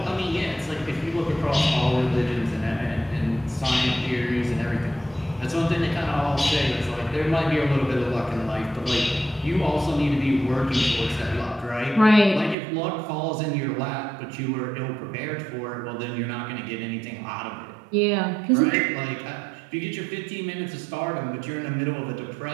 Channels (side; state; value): left; drops out; at 12.6 s